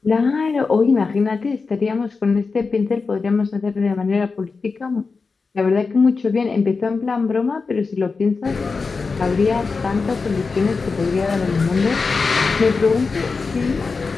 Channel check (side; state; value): right; quieter; 4.5 dB